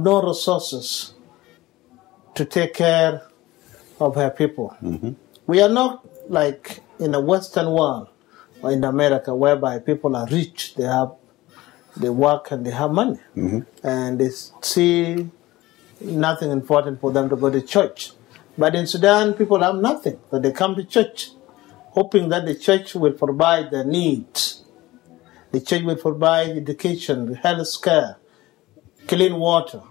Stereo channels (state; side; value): quieter; right; 18.2 dB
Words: resources to take care of her people. We are not like in the Western world or in America, whereby people are rich, they work and they have money, and they see nothing important for them to go to church. But in Sudan, people have nothing, but they come to church, hoping that the church will provide their needs. The church will provide education, health care, clean water,